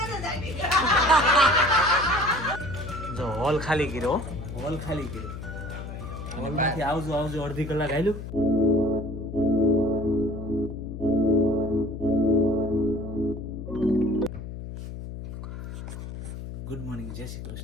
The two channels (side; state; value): left; noise; hum, 9 dB below the sound